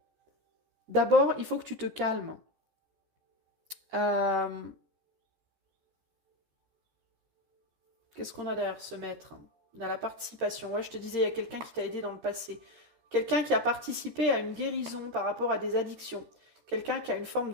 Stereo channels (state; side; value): late; left; 13 ms